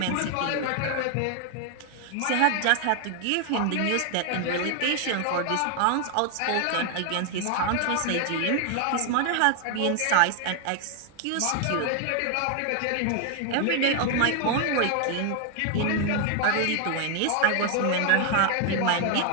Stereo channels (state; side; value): different; both; correlation 0.00